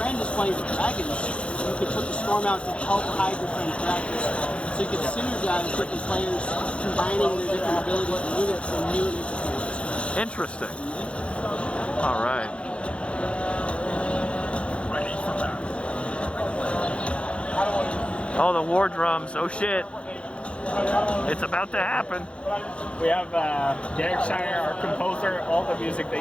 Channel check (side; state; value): right; late; 0.059 ms